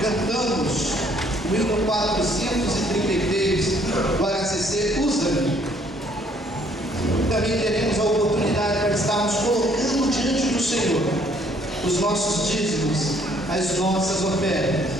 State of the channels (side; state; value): both; normal; correlation 0.63